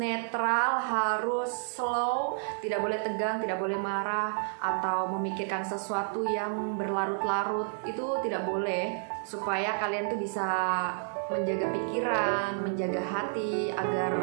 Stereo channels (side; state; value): left; silent; digital silence